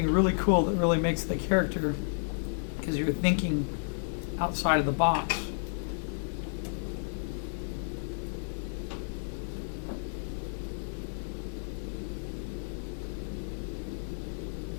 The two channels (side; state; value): right; silent; 57 dB below the other